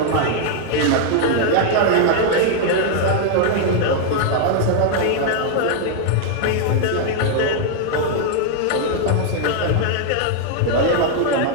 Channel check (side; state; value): both; different; correlation 0.00